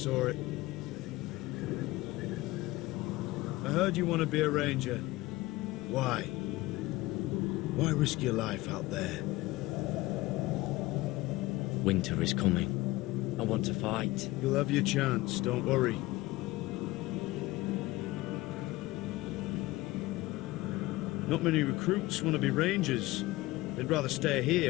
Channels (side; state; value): right; quieter; 19.3 dB